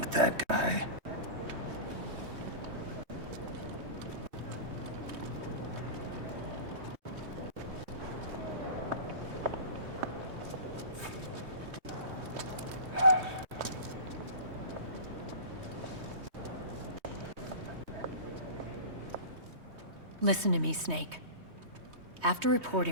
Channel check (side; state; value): left; late; 3.2 ms